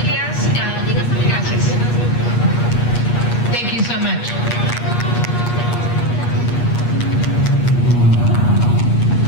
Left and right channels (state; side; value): late; right; 8.4 ms